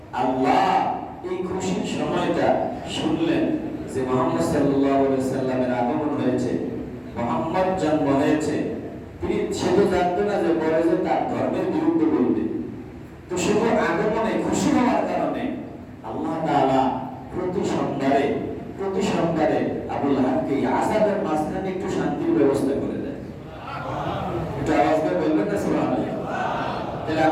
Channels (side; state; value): both; identical; correlation 1.00